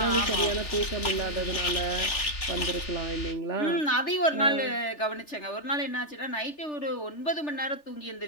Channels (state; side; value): late; right; 3.4 ms